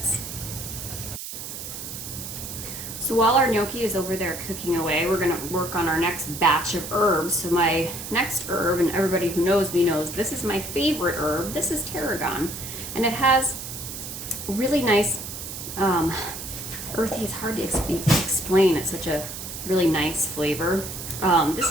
So while our gnocchi is over there cooking away, we're gonna work on our next batch of herbs. So my next herb, and everybody who knows me knows, this is my favorite herb. This is tarragon. And it has really nice, earthy, it's hard to explain. It's such a really nice flavor. This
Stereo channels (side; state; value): right; noise; hiss, 9 dB below the sound